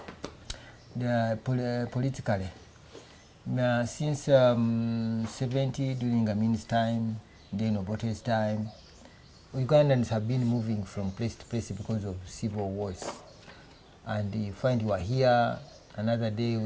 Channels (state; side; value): identical; both; correlation 1.00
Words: politically. Since 70, during Amin's time, then Obote's time, Ugandans have been moving from place to place because of civil wars. And you find you are here, another day